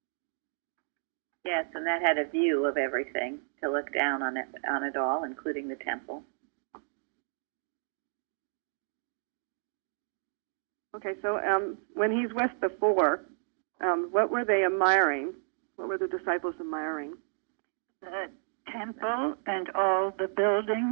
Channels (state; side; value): silent; left; digital silence